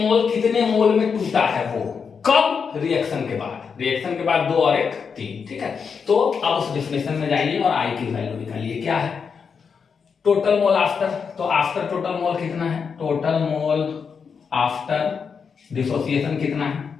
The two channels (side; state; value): right; quieter; 6.0 dB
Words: कितने मोल में टूटा है? वो कब? कब? रिएक्शन के बाद। रिएक्शन के बाद 2 और 1 3। ठीक है, तो अब उस डिफिनेशन में जाइए और आई की वैल्यू निकालिए। क्या है? Total mole after. तो आफ्टर टोटल मोल कितना है? टोटल मोल आफ्टर डिसोसिएशन कितना है?